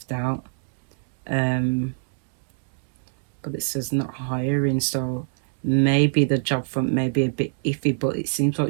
out. But it says not hiring, so maybe the job front may be a bit iffy, but it seems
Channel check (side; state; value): left; silent; 63 dB below the other